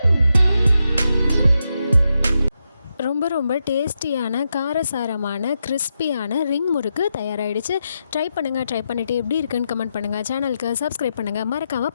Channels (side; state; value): both; inverted; correlation -0.86